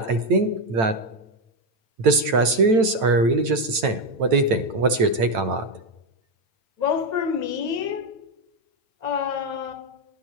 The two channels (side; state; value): left; late; 9.0 ms